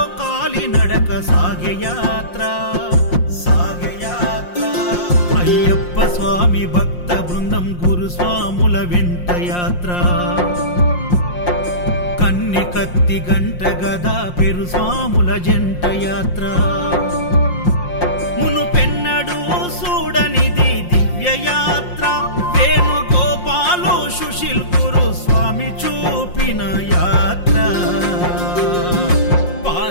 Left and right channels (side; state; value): right; late; 5.6 ms